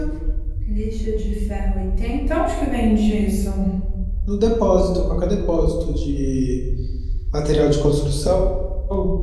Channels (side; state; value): both; identical; correlation 1.00